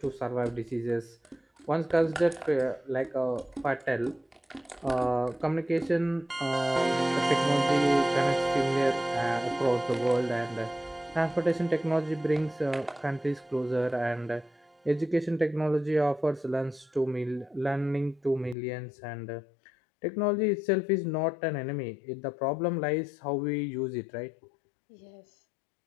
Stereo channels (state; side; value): drops out; right; at 18.6 s